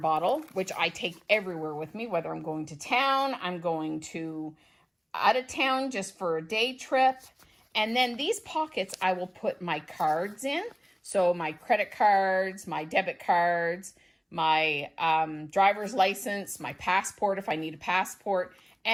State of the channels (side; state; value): both; identical; correlation 1.00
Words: which I take everywhere with me, whether I'm going to town, I'm going to out of town just for a day trip. And then these pockets, I will put my cards in. So my credit cards, my debit cards, my driver's license, my passport if I need a passport,